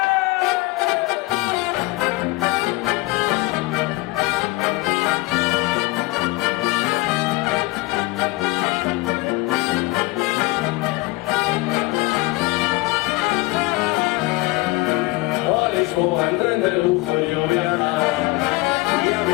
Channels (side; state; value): right; quieter; 21.8 dB